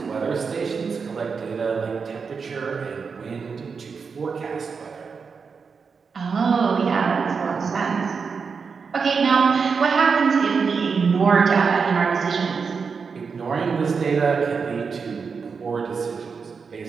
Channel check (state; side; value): quieter; left; 5.5 dB